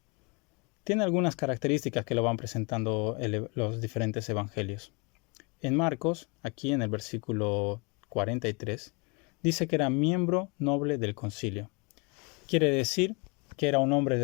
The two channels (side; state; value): right; quieter; 31.3 dB